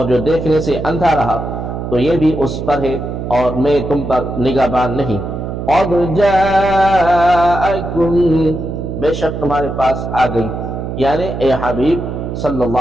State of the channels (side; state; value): right; noise; hum, 6 dB below the sound